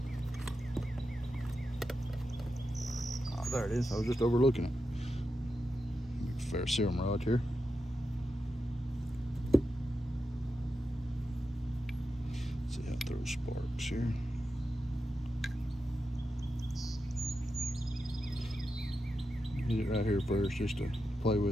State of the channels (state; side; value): normal; both; correlation 0.89